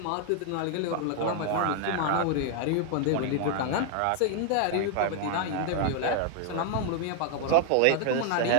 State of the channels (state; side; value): different; both; correlation 0.00